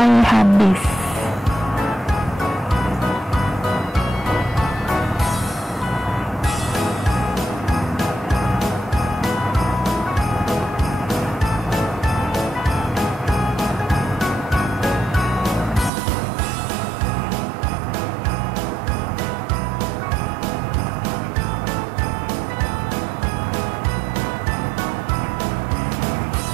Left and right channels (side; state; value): left; drops out; at 15.9 s